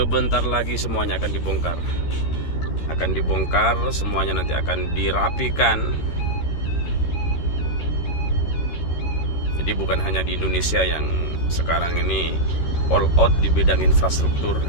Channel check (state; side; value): late; right; 13 ms